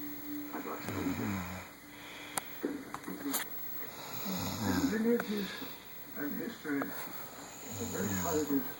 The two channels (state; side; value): noise; left; hum, 27 dB below the sound